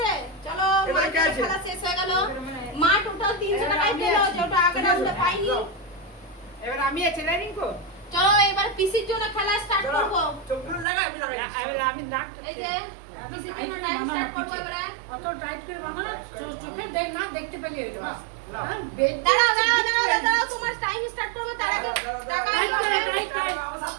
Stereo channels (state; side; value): drops out; left; at 10.9 s